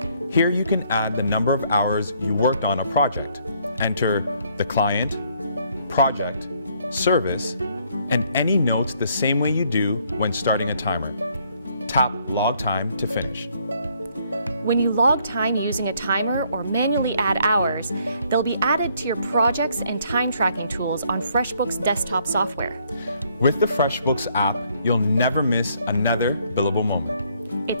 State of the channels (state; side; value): inverted; both; correlation -0.67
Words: Here you can add the number of hours you worked on a project. Enter the client, project, service, and any notes the same way you do when starting a timer. Tap Log Time to finish. When you log time using a timer or manually add hours, they'll be added to your projects and time tracking tools on FreshBooks desktop software. With the FreshBooks app, you'll never miss another billable moment.